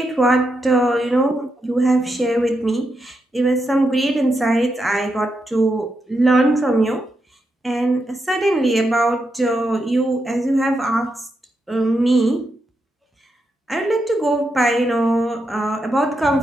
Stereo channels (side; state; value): both; normal; correlation 0.84